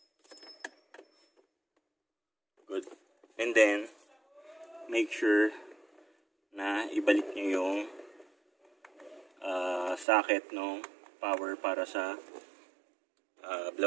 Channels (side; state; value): left; drops out; at 10.1 s